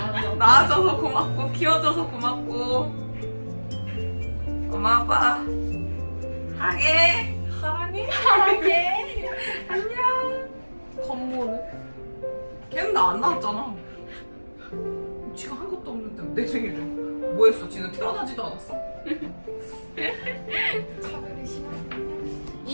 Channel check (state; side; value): inverted; both; correlation -1.00